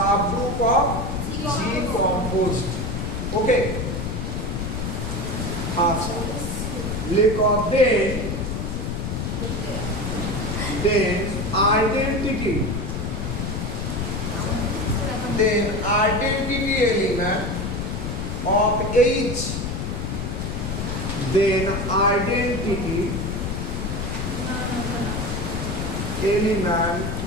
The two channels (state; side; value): noise; left; rumble, 3 dB below the sound